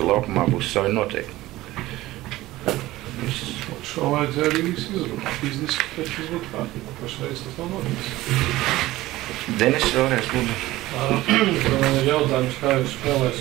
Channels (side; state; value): left; quieter; 17.2 dB